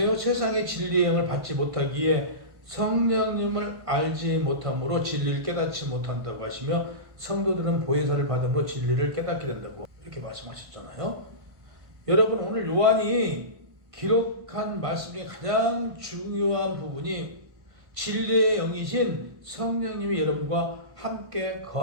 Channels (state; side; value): late; left; 1.5 ms